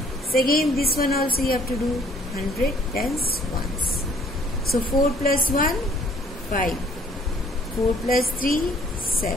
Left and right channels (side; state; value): both; normal; correlation 0.60